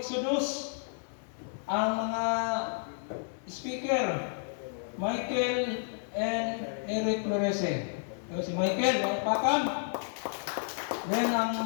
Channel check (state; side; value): silent; right; digital silence